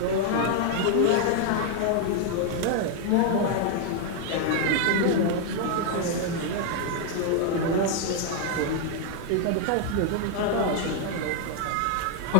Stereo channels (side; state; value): both; different; correlation 0.00